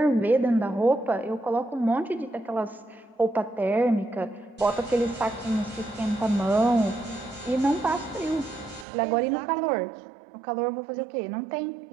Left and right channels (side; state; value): left; drops out; at 8.8 s